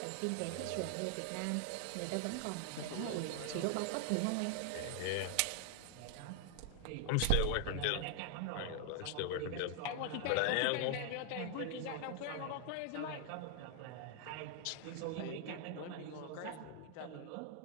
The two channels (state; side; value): different; both; correlation 0.00